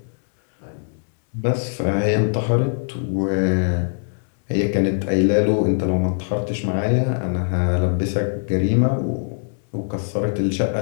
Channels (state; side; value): silent; right; 65 dB below the other